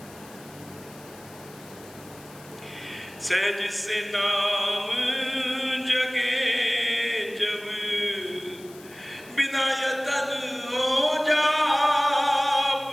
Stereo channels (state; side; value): noise; left; hiss, 21 dB below the sound